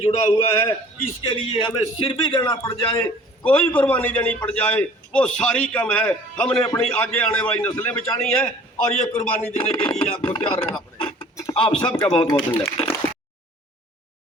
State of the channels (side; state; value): both; normal; correlation 0.50